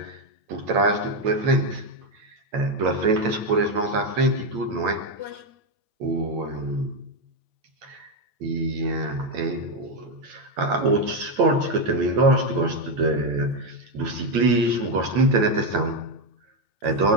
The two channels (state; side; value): late; left; 9.0 ms